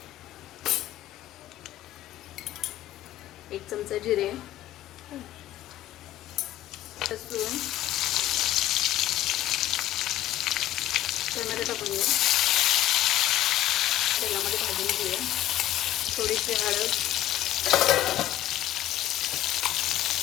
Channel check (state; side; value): quieter; right; 13.6 dB